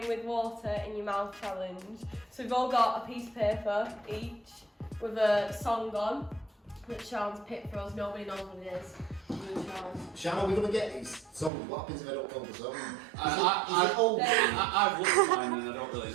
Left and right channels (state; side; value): drops out; left; at 11.5 s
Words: with water in your mouth challenge. So we've all got a piece of paper each with a song on that Sean's picked for us. Nobody knows what it is. Sean, are we going to get these songs? What happens if I don't know the song? I've looked at mine and I don't really